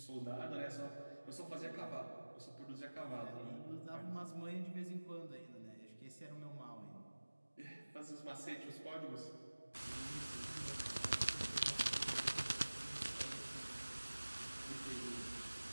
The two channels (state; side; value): inverted; both; correlation -1.00